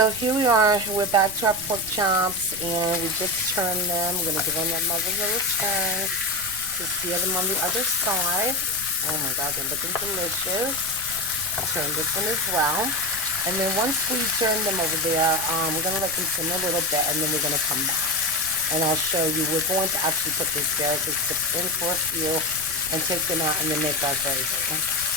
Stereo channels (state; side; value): noise; right; rumble, 16 dB below the sound